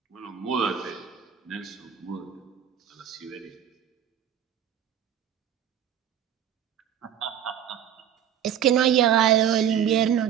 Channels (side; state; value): left; quieter; 9.5 dB